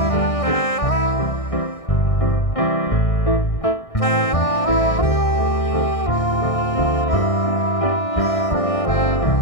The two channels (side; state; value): right; late; 1.6 ms